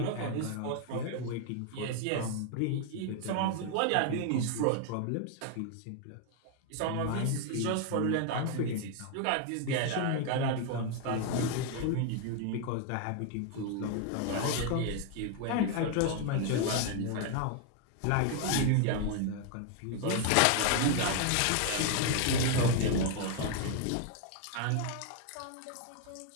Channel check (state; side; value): different; both; correlation 0.00